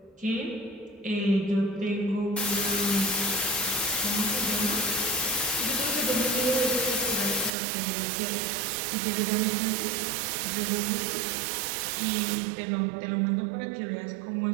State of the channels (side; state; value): left; drops out; at 7.5 s